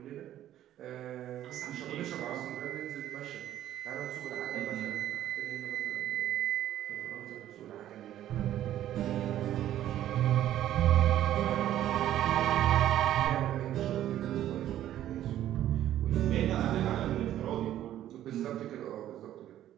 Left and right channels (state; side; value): quieter; left; 12.3 dB